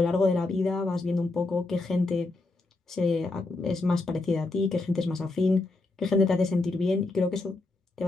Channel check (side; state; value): right; quieter; 3.2 dB